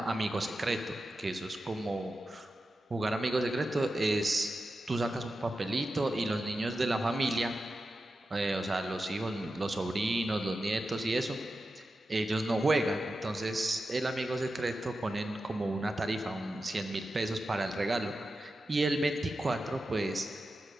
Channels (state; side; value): normal; both; correlation 0.91